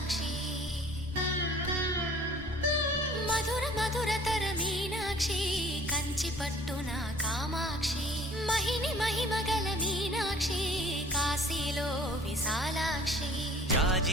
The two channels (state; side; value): normal; both; correlation 0.51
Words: మధుర మధురతర మీనాక్షి కంచి పట్టున కామాక్షి మహిని మహిమగల మీనాక్షి కాశీలో విశాలాక్షి